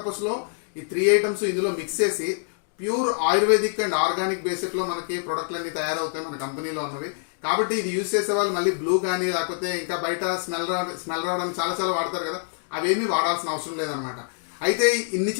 లో ఈ 3 ఐటమ్స్ ఇందులో మిక్స్ చేసి pure ayurvedic and organic basic లో మనకి ప్రొడక్ట్లు అన్ని తయారవుతాయి మన కంపెనీలో ఉన్నవి. కాబట్టి ఇది యూజ్ చేసే వాళ్ళు మళ్ళీ బ్లూ కానీ లేకపోతే ఇంకా బయట స్మెల్ రావడానికి చాలా చాలా వాడతారు కదా, అవేమీ వాడాల్సిన అవసరం లేదనమాట. అయితే ఇన్ని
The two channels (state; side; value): silent; right; digital silence